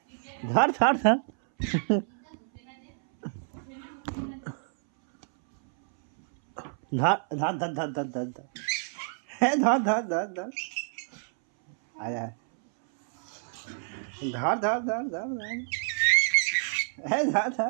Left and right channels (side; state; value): left; silent; 59 dB below the other